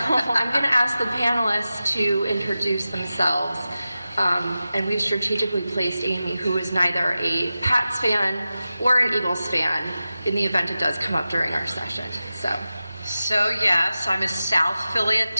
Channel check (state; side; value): inverted; both; correlation -0.94